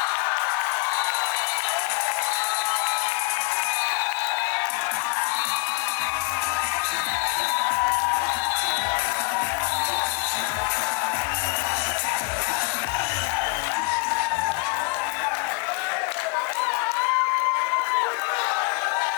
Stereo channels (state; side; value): quieter; right; 30.7 dB